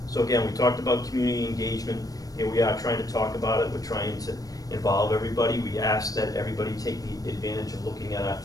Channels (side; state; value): right; late; 0.18 ms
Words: So again, we talked about community engagement. Here we are trying to talk about it. We're trying to involve everybody. We ask that everybody take the advantage of looking at our